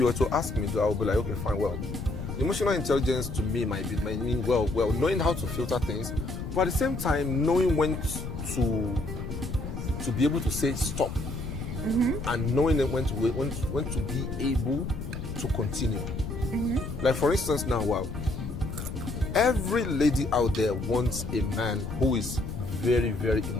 were to ask me, I would be like, okay, fine. Well, emotional intelligence to me might mean knowing how to filter things, but at the same time knowing when to be able to say stop, and knowing when to be able to continue. Like for instance now, every lady out there wants a man who is very, very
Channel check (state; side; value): noise; left; rumble, 6 dB below the sound